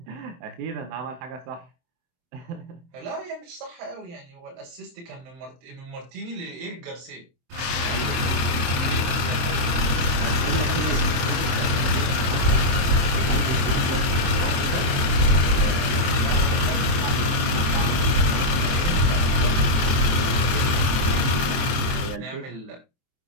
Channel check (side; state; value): left; late; 23 ms